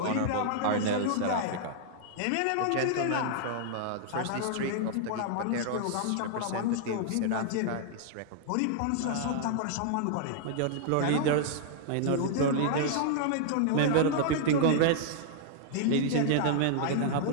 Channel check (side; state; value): both; different; correlation -0.01